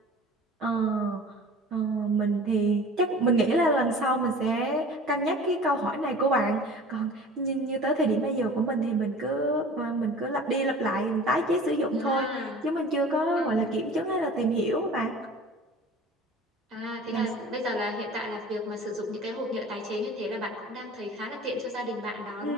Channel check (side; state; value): both; normal; correlation 0.42